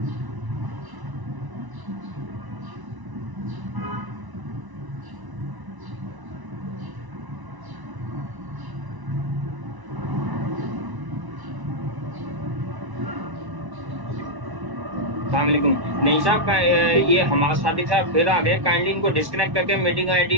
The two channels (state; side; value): late; left; 1.1 ms